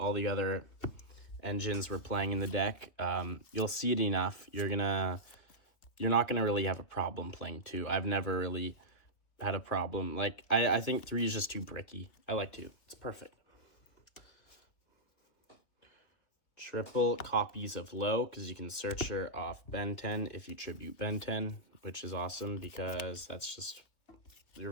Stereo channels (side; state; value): right; late; 2.6 ms